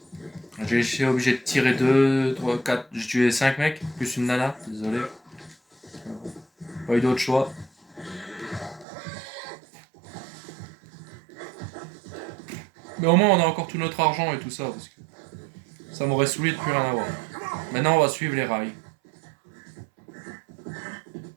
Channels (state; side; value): drops out; left; at 8.8 s